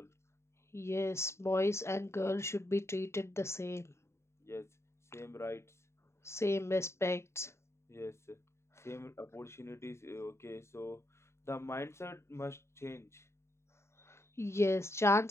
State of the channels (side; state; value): right; late; 0.13 ms